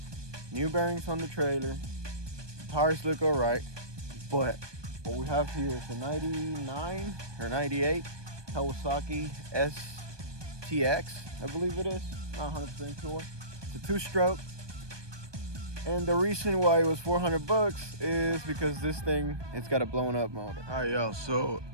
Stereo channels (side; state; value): left; late; 1.2 ms